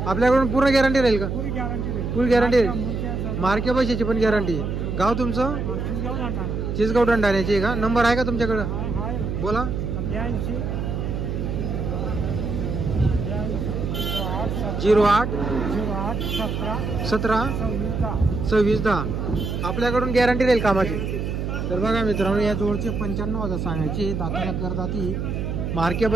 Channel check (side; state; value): right; noise; hum, 2 dB below the sound